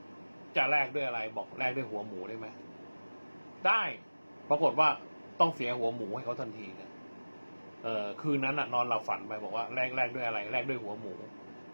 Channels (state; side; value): inverted; both; correlation -1.00